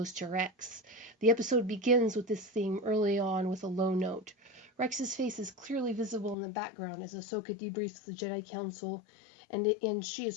to Rex. The episode begins with this theme early on with a low note. Rex's face is clearly visible in the background as Ahsoka debriefs the Jedi Council, and she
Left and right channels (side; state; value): right; drops out; at 6.4 s